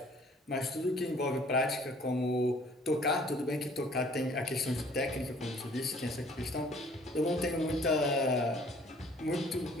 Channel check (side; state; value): both; normal; correlation 0.56